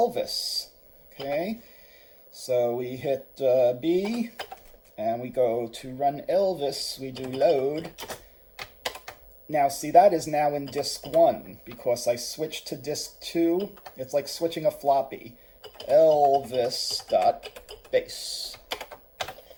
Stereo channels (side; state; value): both; identical; correlation 1.00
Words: Okay, so we hit B, and we go to run Elvis. We do load. Now, see, that is now in disk 1 because I switched to disk 2. It's like switching a floppy. Elvis.base.